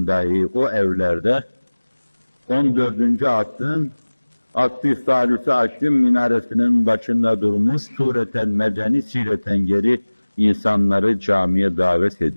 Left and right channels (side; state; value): both; inverted; correlation -1.00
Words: dahi o evlerde 14. asrın Asr-ı Salüs-i Aşrın minaresinin başında durmuş sureten medeni sireten geri insanları camiye davet